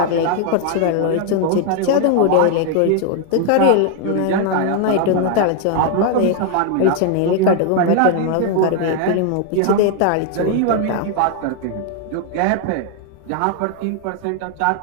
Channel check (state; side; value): different; both; correlation 0.00